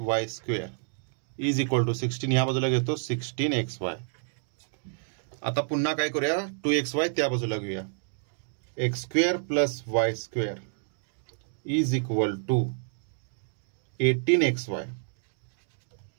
square is equal to 16, या बाजूला घेतो 16xy. आता पुन्हा काय करूया, 2xy त्या बाजूला घेऊया, x square plus y square is equal to 18xy.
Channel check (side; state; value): left; silent; digital silence